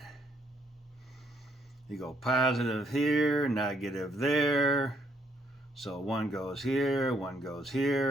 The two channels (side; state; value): both; normal; correlation 0.70